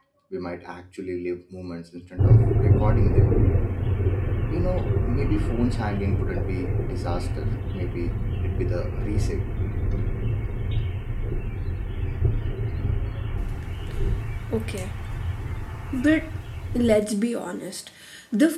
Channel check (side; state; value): both; identical; correlation 1.00